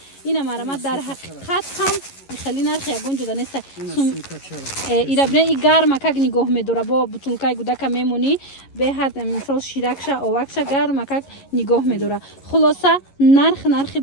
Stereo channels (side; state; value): right; late; 11 ms